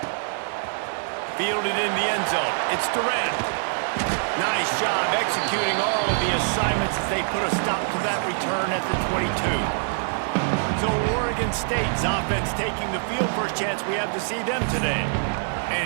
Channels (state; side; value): silent; left; 62 dB below the other